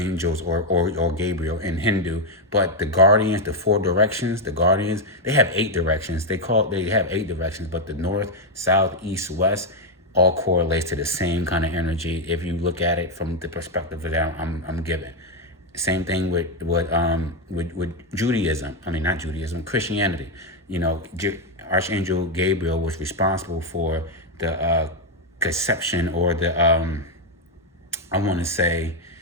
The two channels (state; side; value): normal; both; correlation 0.03